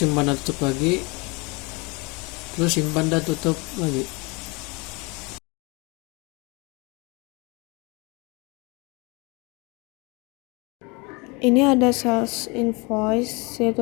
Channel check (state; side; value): quieter; right; 28.2 dB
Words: dan tutup lagi. Terus simpan dan tutup lagi. Ini ada sales invoice,